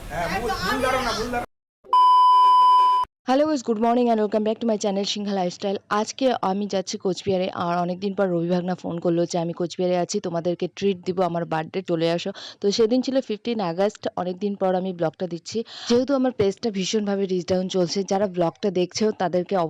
হ্যাঁ ভুল ধরো না ভুল ধরো hello guys, good morning and welcome back to my channel Sinha lifestyle. আজকে আমি যাচ্ছি কোচবিহারে, আর অনেকদিন পর রবি ভাগনা ফোন করলো যে আমি কোচবিহারে আছি, তোমাদেরকে ট্রিট দিব, আমার বার্থডে চলে আসো। তো সেদিন ছিল 15 আগস্ট, অনেকদিন পর আমি ব্লগটা দিচ্ছি। যেহেতু আমার পেজটা ভীষণভাবে রিচ ডাউন চলছে, যারা ব্লগটা দেখছো তাদেরকে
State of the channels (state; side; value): identical; both; correlation 1.00